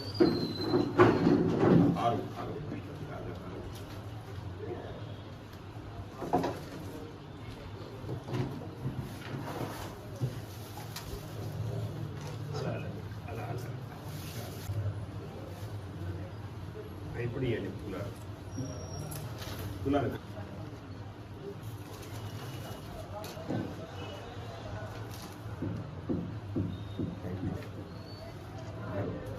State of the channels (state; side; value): identical; both; correlation 1.00